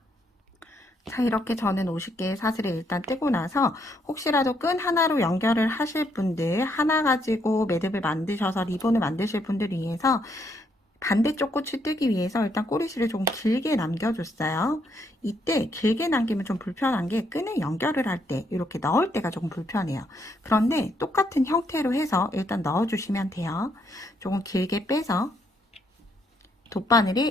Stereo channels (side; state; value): both; normal; correlation 0.73